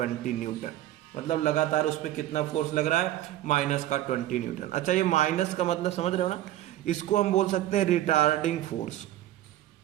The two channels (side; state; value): left; quieter; 13.8 dB